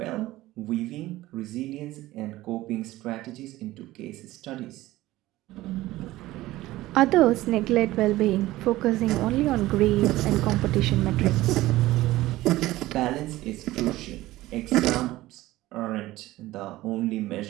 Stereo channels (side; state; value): left; quieter; 17.0 dB